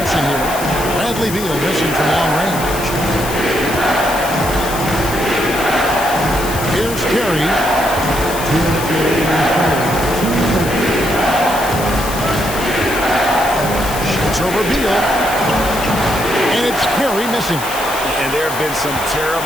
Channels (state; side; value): noise; left; hiss, 9 dB below the sound